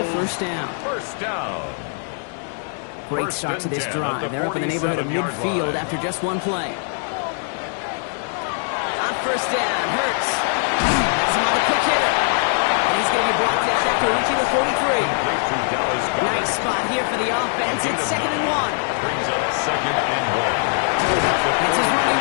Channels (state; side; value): silent; right; 56 dB below the other